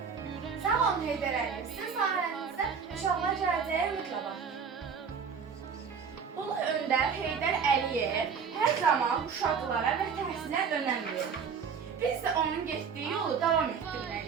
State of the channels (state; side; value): quieter; left; 6.3 dB